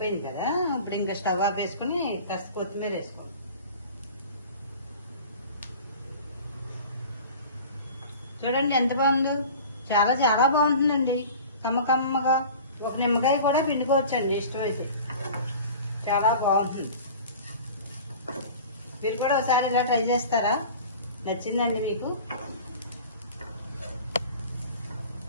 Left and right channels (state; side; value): inverted; both; correlation -0.40